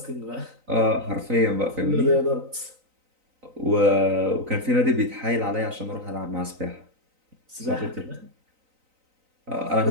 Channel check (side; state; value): left; late; 3.9 ms